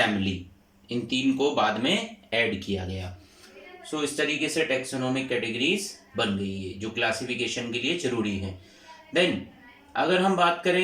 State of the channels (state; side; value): identical; both; correlation 1.00